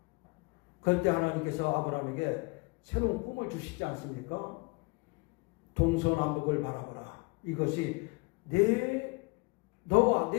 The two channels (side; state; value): right; quieter; 28.2 dB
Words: 그럴 때 하나님께서 아브라함에게 새로운 꿈을 주시지 않습니까? 동서남북을 바라보라. 이것이 내 너와